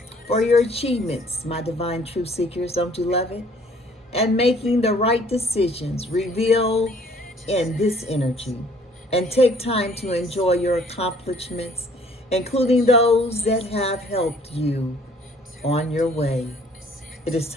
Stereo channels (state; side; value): normal; both; correlation 0.58